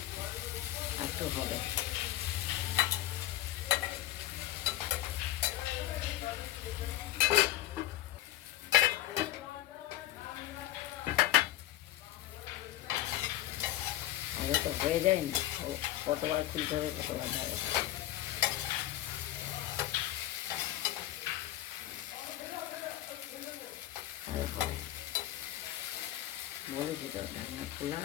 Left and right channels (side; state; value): right; quieter; 14.3 dB